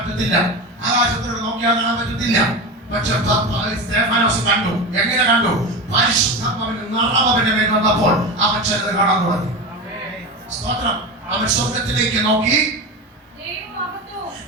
ആകാശത്തോട് നോക്കിയാൽ കാണാൻ പറ്റത്തില്ല. പക്ഷെ സ്തേഫാനോസ് കണ്ടു. എങ്ങനെ കണ്ടു? പരിശുദ്ധാത്മാവിന്റെ നിറവ് അവന്റെ മേൽ വന്നപ്പോൾ അവൻ ചിലത് കാണാൻ തുടങ്ങി. സ്തോത്രം. അവൻ സ്വർഗത്തിലേക്ക് നോക്കി.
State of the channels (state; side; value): normal; both; correlation 0.23